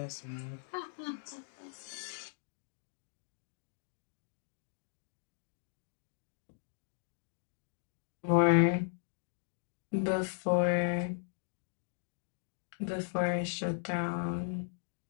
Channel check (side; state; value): right; silent; digital silence